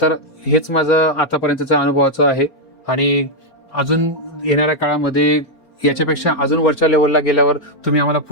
तर हेच माझं आतापर्यंतच्या अनुभवाचं आहे, आणि अजून येणाऱ्या काळामध्ये याच्यापेक्षा अजून वरच्या लेवलला गेल्यावर तुम्ही आम्हाला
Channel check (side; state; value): right; late; 4.3 ms